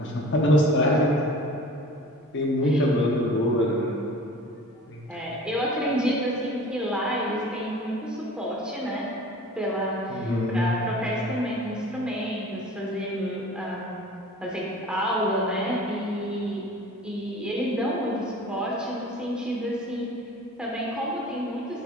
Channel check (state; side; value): normal; both; correlation 0.43